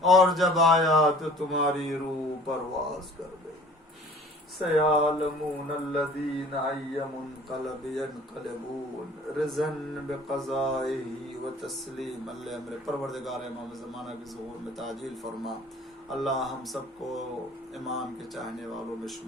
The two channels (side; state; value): both; normal; correlation 0.48